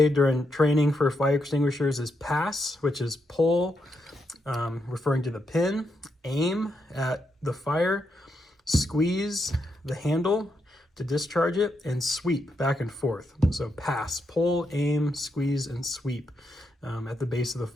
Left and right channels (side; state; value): both; normal; correlation 0.82